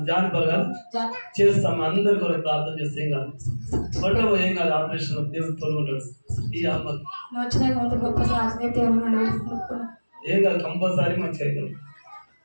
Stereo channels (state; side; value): inverted; both; correlation -1.00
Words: జానపరగా చేస్తాం, అందరి కొరకు ప్రార్థన చేస్తే ఏం కాదు, పట్టబో ఏం కాదు, ఆపరేషన్ దేవుడు తోడుకుంటాడు. ఈ అమ్మకి ఏం కాదు, కంపల్సరీ మంచిగా అవుతాం.